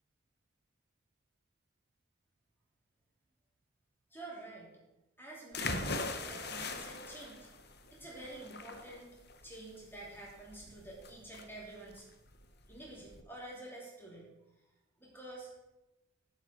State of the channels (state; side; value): normal; both; correlation 0.20